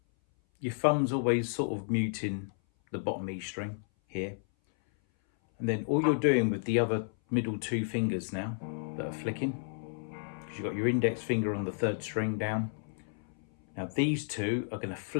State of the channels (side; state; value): right; silent; 57 dB below the other